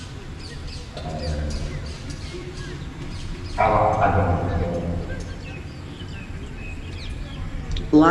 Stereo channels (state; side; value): identical; both; correlation 1.00